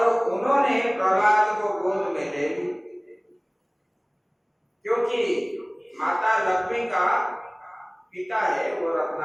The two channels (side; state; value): both; identical; correlation 1.00